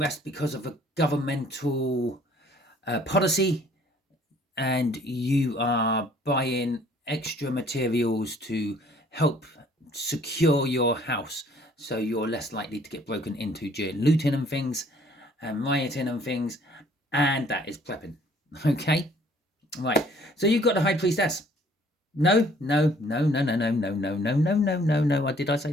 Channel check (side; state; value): both; normal; correlation 0.58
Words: because of a governmental policy, and you are buying extra materials to help secure your house so you're less likely to get broken into during looting and things and rioting and things, and that is prepping. Okay, right, so you've got the High Priestess. No. Did I